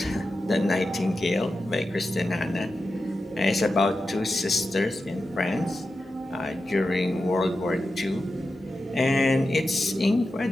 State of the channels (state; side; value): normal; both; correlation 0.91